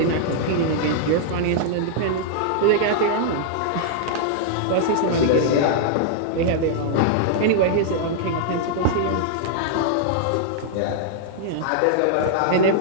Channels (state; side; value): different; both; correlation -0.01